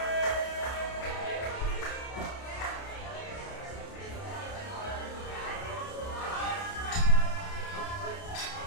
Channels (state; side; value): late; right; 30 ms